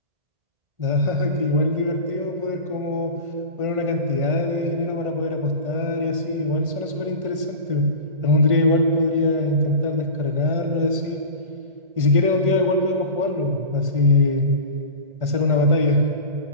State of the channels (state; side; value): late; left; 1.5 ms